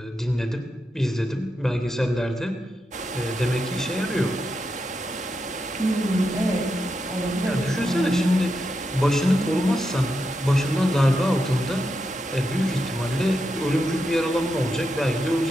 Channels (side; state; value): both; normal; correlation 0.86